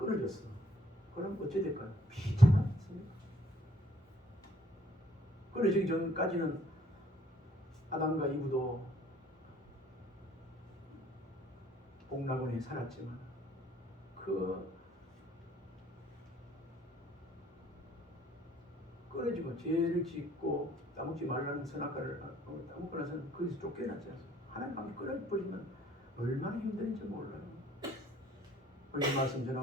그럼 어찌 될까요? 비참하지 않습니까? 끊어지기 전까지는 아담과 이브도 복락원에 살았지만 그 끊어지고 죄를 짓고 따먹지 말라는 선악과를 따먹고 나서는 거기서 쫓겨났지 않습니까? 하나님 관계 끊어버리면 얼마나 힘든지 몰라요. 오늘 말씀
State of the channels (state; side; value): normal; both; correlation 0.62